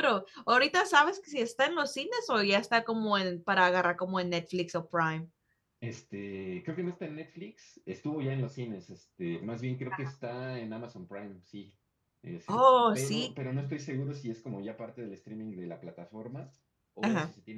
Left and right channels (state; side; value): identical; both; correlation 1.00